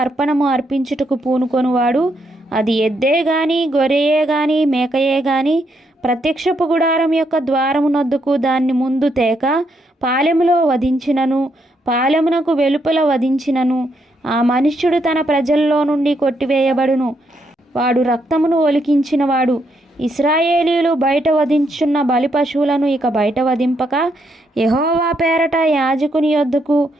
అర్పణము అర్పించుటకు పూనుకొనువాడు, అది ఎద్దే గాని గొర్రెయే గాని మేకయే గాని, ప్రత్యక్షపు గుడారం యొక్క ద్వారమునొద్దకు దాన్ని ముందు తేక పాలెములో వధించినను, పాలెమునకు వెలుపల వధించినను, ఆ మనుష్యుడు తన ప్రజల్లో నుండి కొట్టివేయబడును. వాడు రక్తమును ఒలికించినవాడు. ఇశ్రాయేలీయులు బయట వధించున్న బలి పశువులను ఇక బయట వధింపక యెహోవా పేరట యాజకుని యొద్దకు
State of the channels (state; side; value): normal; both; correlation 0.77